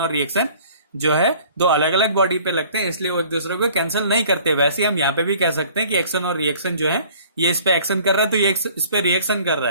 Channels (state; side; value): inverted; both; correlation -0.52